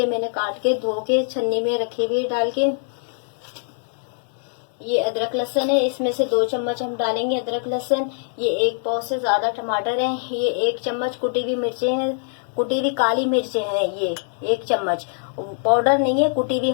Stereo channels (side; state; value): right; silent; 64 dB below the other